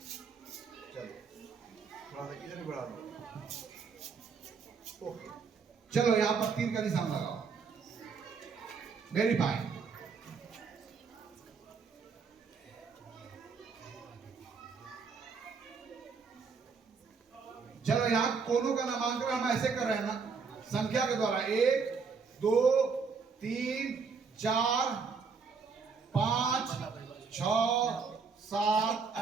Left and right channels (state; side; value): quieter; left; 5.2 dB